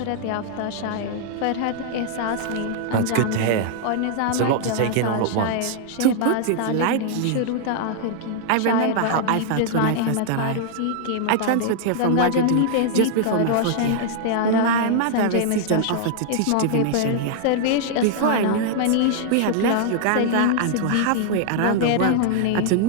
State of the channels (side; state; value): both; different; correlation -0.01